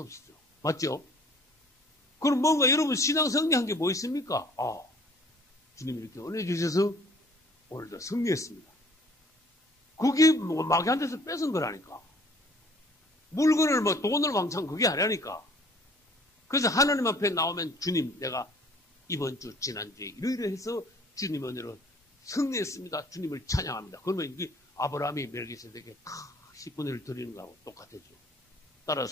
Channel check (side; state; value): both; normal; correlation 0.54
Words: 없죠. 맞죠? 그럼 뭔가 여러분 신앙 승리한 게 뭐 있습니까? 아, 주님이 이렇게 은혜 주셔서 오늘도 승리했습니다. 그게 뭐 마귀한테서 뺏은 거라니까. 물건을 뭐 돈을 왕창 그게 아니라니까. 그래서 하나님 앞에 나오면 주님 내가 이번 주 지난주에 이러이러해서 주님 은혜로 승리했습니다. 주님을 찬양합니다. 그러면 이게 아브라함이 멜기세덱에게 10분의 1 드리는 거하고 똑같아져.